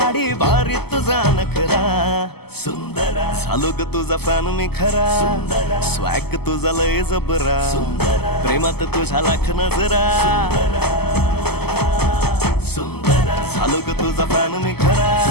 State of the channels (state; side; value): late; right; 0.96 ms